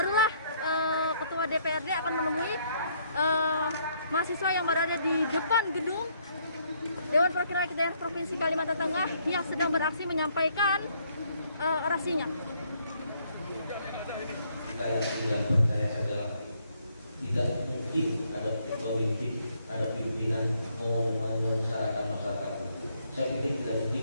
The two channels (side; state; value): both; inverted; correlation -0.69